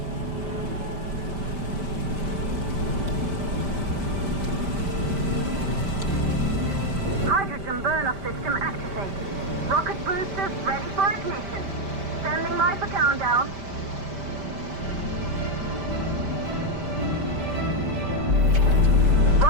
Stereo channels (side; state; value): left; late; 5.1 ms